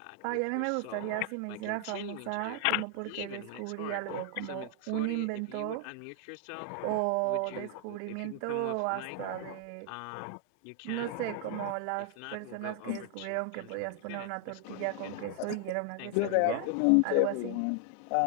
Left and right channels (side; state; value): both; different; correlation 0.00